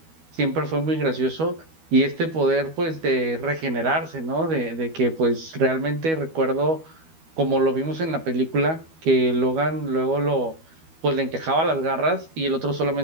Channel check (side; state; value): left; late; 12 ms